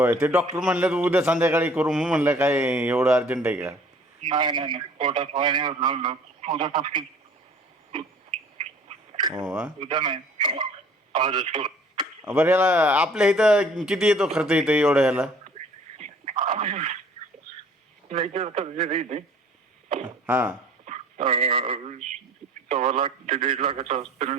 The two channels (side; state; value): both; normal; correlation 0.52